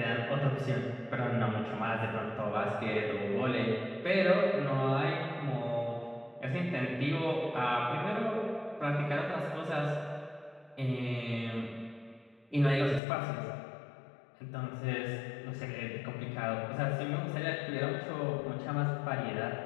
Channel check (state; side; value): drops out; right; at 13.0 s